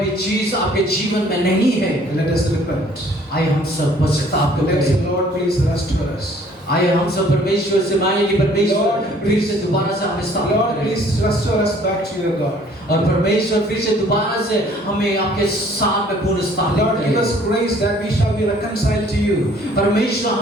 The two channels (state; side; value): normal; both; correlation 0.57